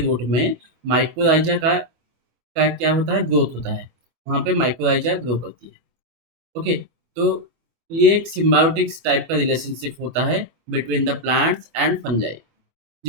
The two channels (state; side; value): late; left; 24 ms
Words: में माइक्रोराइजा का क्या होता है, ग्रोथ होता है, वहाँ पे माइक्रोराइजा ग्रो करती है। ओके, तो ये एक सिम्बायोटिक टाइप का रिलेशनशिप होता है between the plants and fungi,